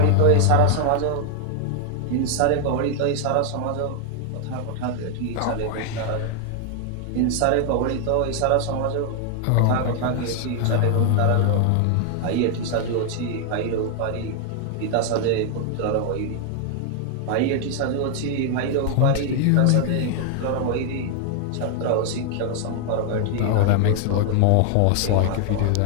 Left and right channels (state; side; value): different; both; correlation 0.00